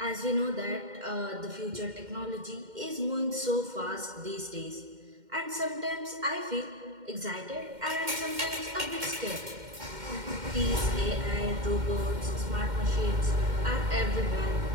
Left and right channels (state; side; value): late; left; 2.1 ms